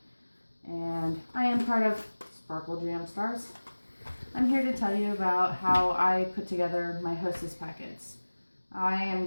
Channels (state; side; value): inverted; both; correlation -1.00